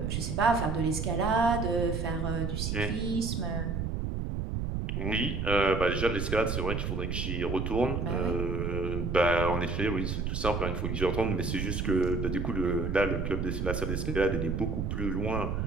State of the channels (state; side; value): noise; right; rumble, 2 dB below the sound